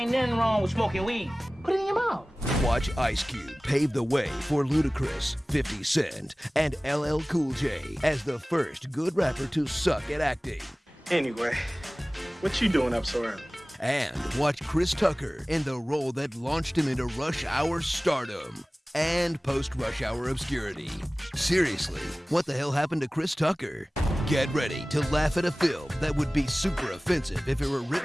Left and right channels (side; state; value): both; normal; correlation 0.98